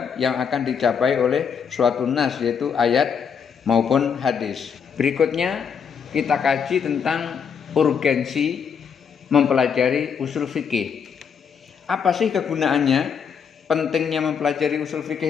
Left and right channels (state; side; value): quieter; right; 6.9 dB